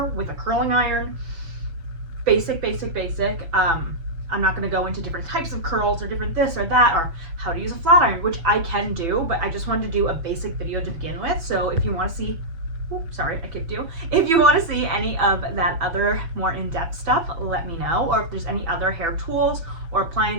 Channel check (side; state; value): left; late; 6.1 ms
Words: with a curling iron. Basic. I'm not going to go into different types of curls or different this or that or how to use a flat iron, which I can do, but I just wanted to do a basic video to begin with. So if you want to see, sorry, I kicked you. If you want to see any of that other more in-depth stuff, let me know. Or if there's any other hair tools or